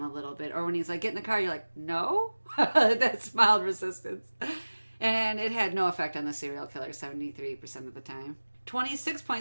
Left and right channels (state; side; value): inverted; both; correlation -1.00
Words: a little bit. Or when he's get in the car, you're like, no? That's mild resistance. And it had no effect on the serial killer 73% of the time.